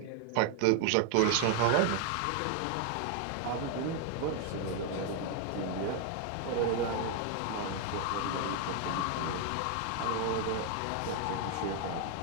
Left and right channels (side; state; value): both; different; correlation 0.00